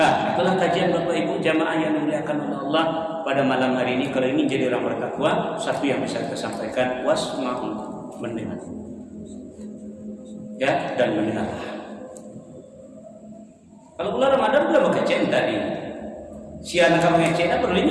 itulah kajian Bapak Ibu jamaah yang dimuliakan oleh Allah pada malam hari ini. Kalau ini jadi orang bertakwa, satu yang bisa kita sampaikan, wasma'u, mendengar. Ya, dan mendengar. Kalau bulan Ramadan sudah berkajian tadi. Si anak kamu yang perlu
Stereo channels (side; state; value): both; identical; correlation 1.00